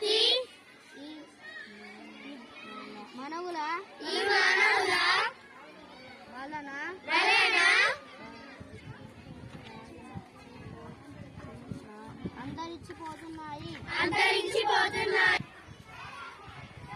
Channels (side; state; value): both; identical; correlation 1.00